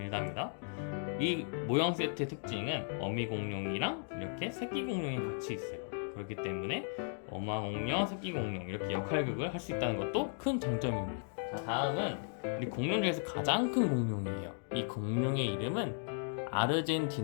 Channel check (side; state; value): right; silent; 54 dB below the other